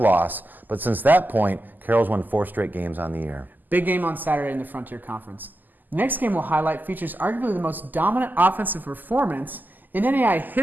but since that point, Carroll's won 4 straight games on the year. Big game on Saturday in the Frontier Conference. The next game we'll highlight features arguably the most dominant offensive performance in NAIA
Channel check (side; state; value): left; late; 0.086 ms